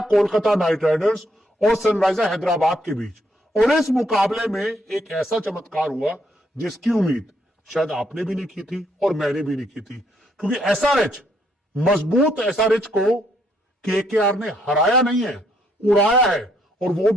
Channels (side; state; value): both; normal; correlation 0.72